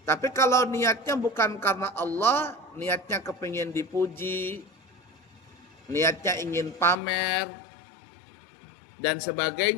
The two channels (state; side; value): drops out; right; at 7.0 s